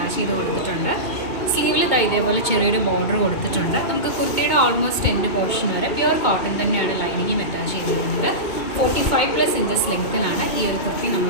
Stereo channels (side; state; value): right; late; 2.2 ms